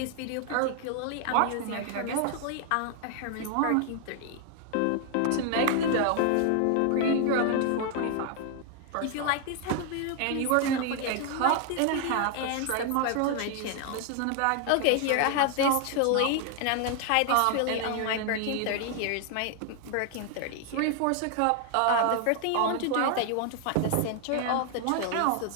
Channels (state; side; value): different; both; correlation 0.00